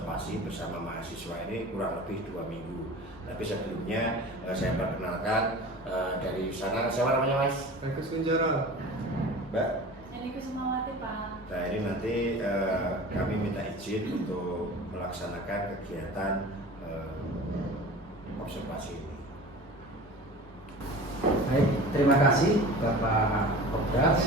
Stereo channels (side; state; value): both; normal; correlation 0.38